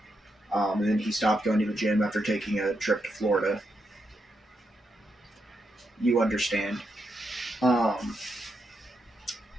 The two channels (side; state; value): both; normal; correlation 0.83